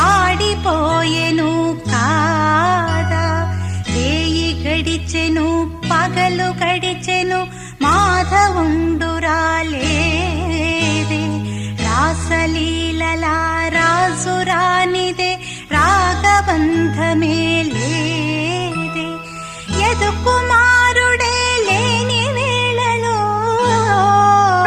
కాదా. రేయి గడిచెను పగలు గడిచెను మాధవుండు రాలేదే. రాసలీలలా రాజు రానిదే రాగబంధమే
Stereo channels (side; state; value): both; identical; correlation 1.00